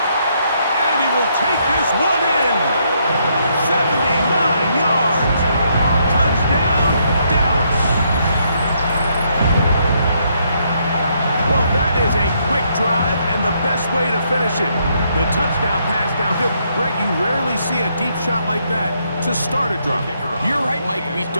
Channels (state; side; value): inverted; both; correlation -0.73